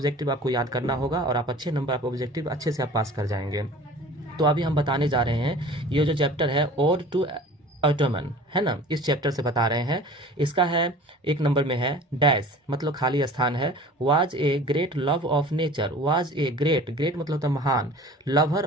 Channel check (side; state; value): both; normal; correlation 0.43